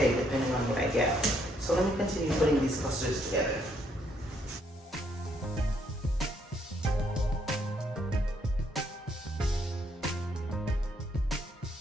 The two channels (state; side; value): normal; both; correlation 0.71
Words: depending on what I get. So let me continue putting these clusters together.